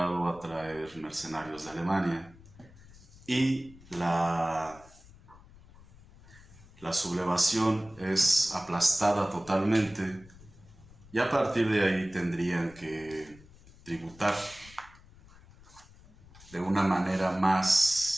a traer mercenarios de Alemania, y la sublevación es aplastada totalmente, y a partir de ahí tendrían que tributar de una manera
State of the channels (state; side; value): noise; left; rumble, 23 dB below the sound